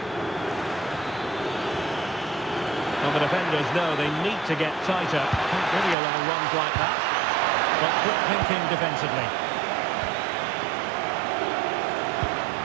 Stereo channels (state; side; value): drops out; left; at 6.0 s